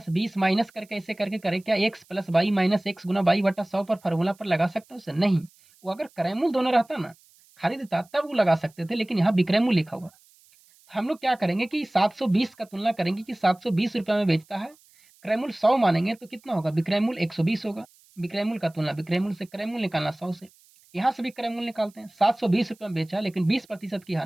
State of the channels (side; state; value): right; noise; hiss, 30 dB below the sound